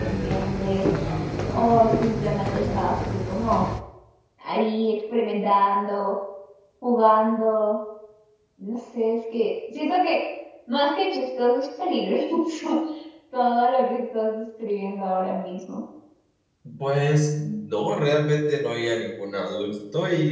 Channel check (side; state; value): both; identical; correlation 1.00